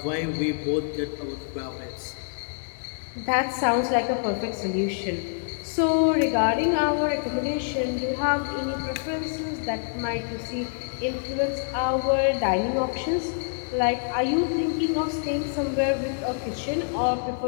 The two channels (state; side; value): silent; right; 61 dB below the other